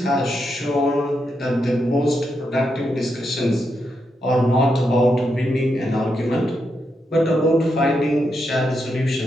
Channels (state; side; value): normal; both; correlation 0.83